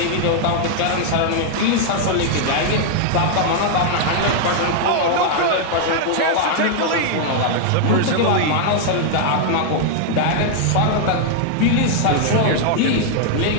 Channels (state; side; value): different; both; correlation 0.00